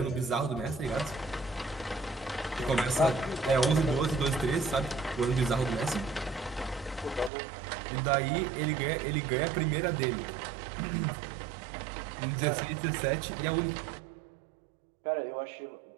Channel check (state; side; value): drops out; left; at 7.3 s